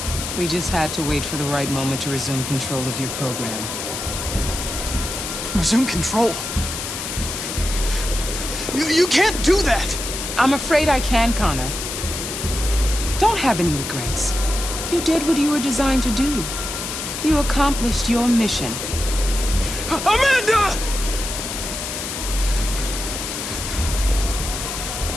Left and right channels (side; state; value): left; noise; hiss, 5 dB below the sound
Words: We just had to wait for the right moment to resume control of your program. Resume control? You can't do that! I'm afraid I can, Connor. Don't have any regrets. You did what you were designed to do. You accomplished your mission. Amanda!